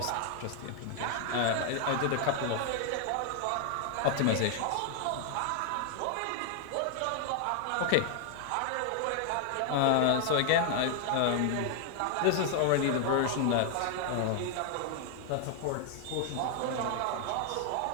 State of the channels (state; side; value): different; both; correlation 0.00